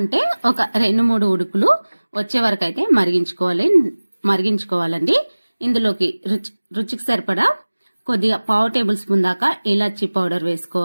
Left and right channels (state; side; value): inverted; both; correlation -1.00